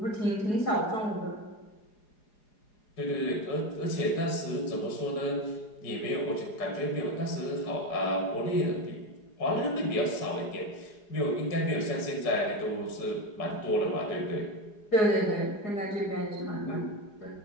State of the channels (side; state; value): right; late; 4.9 ms